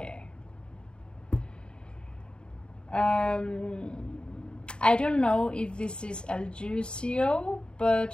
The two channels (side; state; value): right; late; 0.051 ms